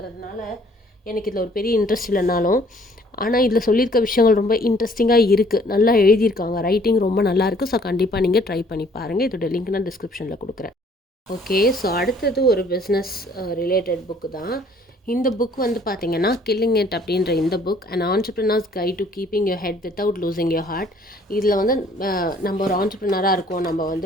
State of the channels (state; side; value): normal; both; correlation 0.59